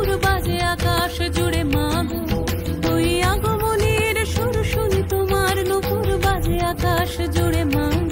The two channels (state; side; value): identical; both; correlation 1.00